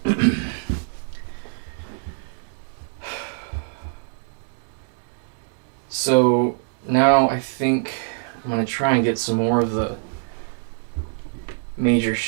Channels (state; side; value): silent; left; digital silence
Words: So now I think I'm going to try and get some more of the major